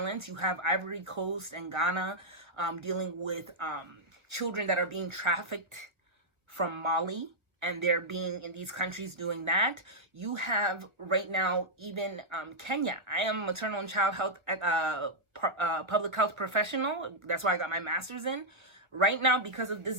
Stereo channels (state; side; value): late; left; 1.4 ms